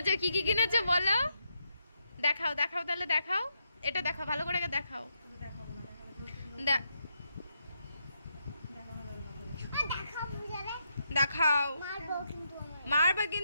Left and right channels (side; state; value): both; inverted; correlation -0.81